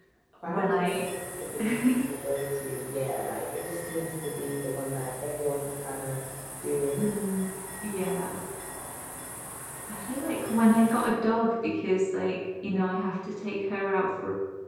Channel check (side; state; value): both; identical; correlation 1.00